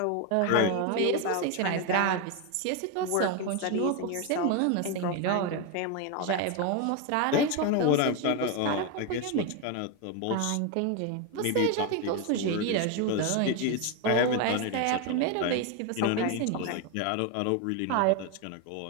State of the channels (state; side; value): different; both; correlation 0.01